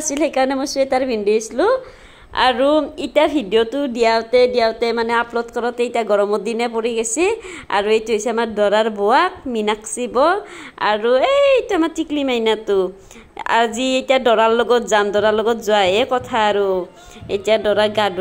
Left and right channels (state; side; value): identical; both; correlation 1.00